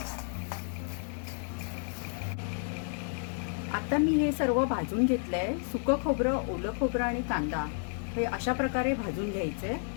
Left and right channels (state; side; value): silent; right; 57 dB below the other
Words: आता मी हे सर्व भाजून घेतलंय. सुकं खोबरं, ओलं खोबरं आणि कांदा हे अशा प्रकारे भाजून घ्यायचंय.